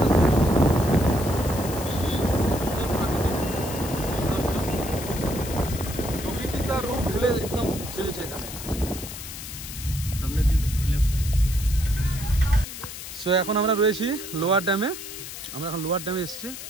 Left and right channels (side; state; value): left; noise; hiss, 10 dB below the sound